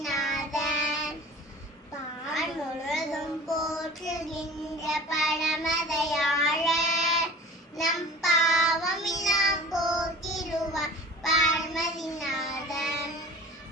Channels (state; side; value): normal; both; correlation 0.41